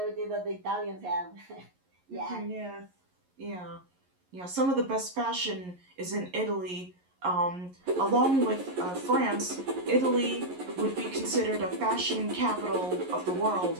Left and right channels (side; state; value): left; late; 11 ms